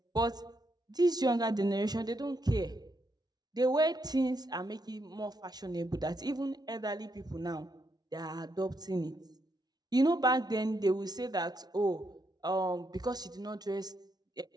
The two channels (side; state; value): left; late; 0.19 ms